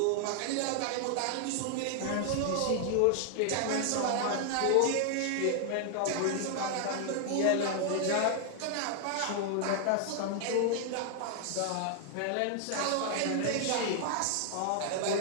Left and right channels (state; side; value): different; both; correlation 0.00